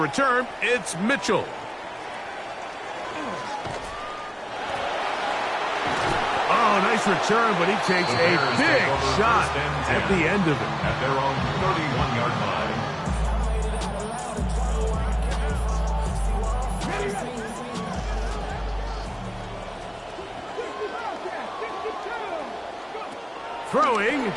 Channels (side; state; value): both; identical; correlation 1.00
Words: it's Mitchell. Oh, nice return, but he takes a big shot at the end of it. At their own 31-yard line. Throwing,